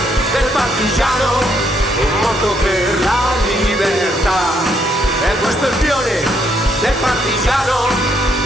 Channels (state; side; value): normal; both; correlation 0.73